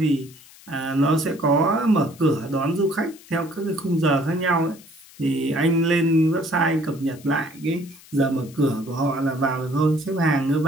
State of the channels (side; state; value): left; noise; hiss, 23 dB below the sound